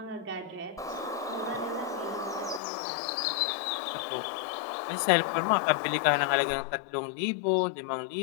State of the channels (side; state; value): right; drops out; at 2.6 s